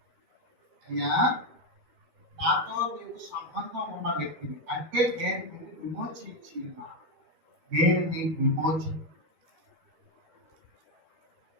అయ్యా నాతో నీకు సంబంధం ఉన్న వ్యక్తిని అంటే నేను నిన్ను విమోచించి ఉన్నాను. నేను నీకు విమోచన,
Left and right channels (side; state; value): left; late; 13 ms